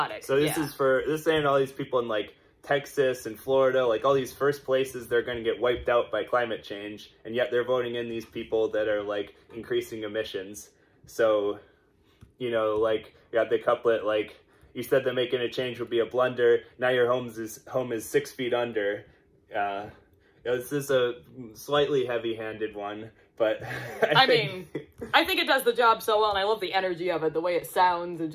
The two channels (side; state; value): both; identical; correlation 1.00